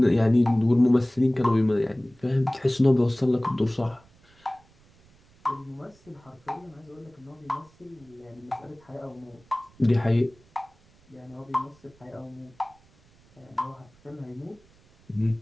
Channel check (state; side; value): noise; right; rumble, 30 dB below the sound